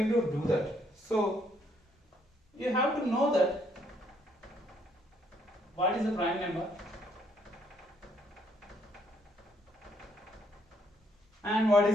to do that. So you have to know that what is the prime number and what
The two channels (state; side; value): normal; both; correlation 0.70